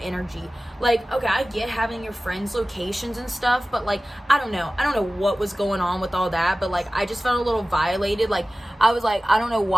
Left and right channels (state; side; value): normal; both; correlation 0.96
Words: Like, okay, I get having your friends' locations and stuff, but like, I don't know what was going on with all that, but like, I just felt a little violated. Like, I was like, I don't know